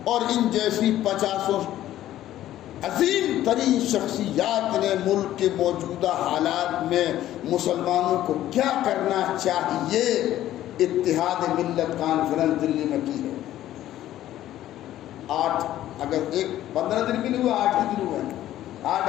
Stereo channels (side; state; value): right; quieter; 13.3 dB